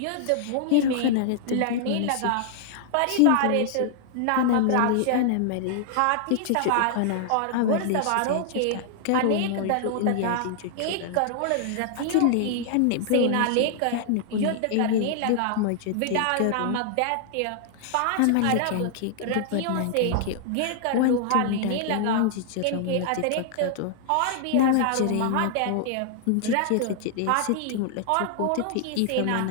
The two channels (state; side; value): different; both; correlation -0.01